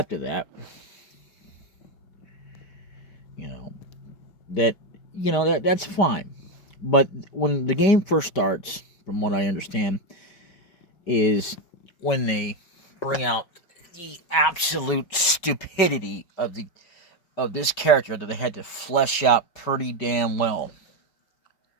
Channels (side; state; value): right; late; 5.1 ms